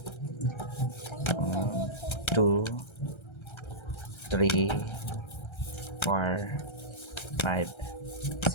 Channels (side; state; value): right; late; 1.3 ms